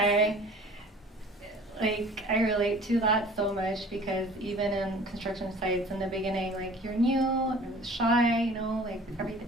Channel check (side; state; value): both; normal; correlation 0.47